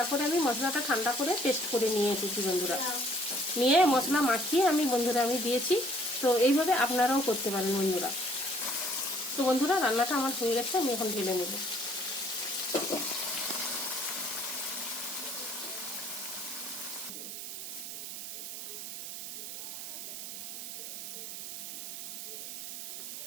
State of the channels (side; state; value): right; noise; hiss, 7 dB below the sound